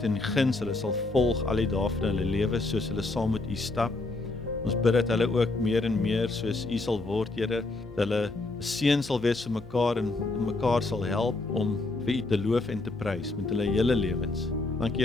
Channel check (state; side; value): quieter; right; 3.1 dB